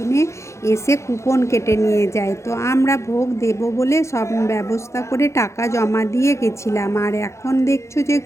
এসে কুপন কেটে নিয়ে যায়। তো আমরা ভোগ দেব বলে সব ব্যবস্থা করে টাকা জমা দিয়ে গেছিলাম। আর এখন দেখছো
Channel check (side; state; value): right; late; 0.14 ms